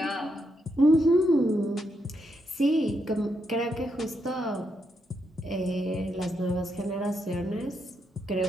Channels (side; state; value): both; normal; correlation 0.80